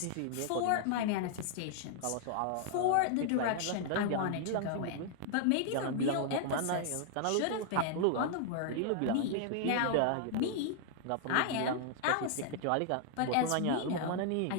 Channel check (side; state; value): both; different; correlation -0.01